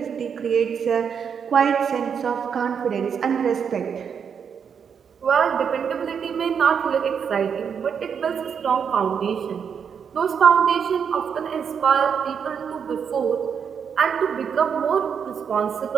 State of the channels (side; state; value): left; quieter; 7.0 dB